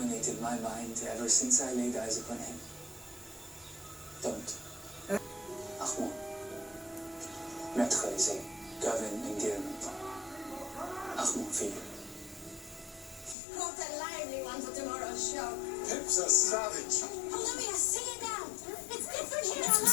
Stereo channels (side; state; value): right; drops out; at 13.4 s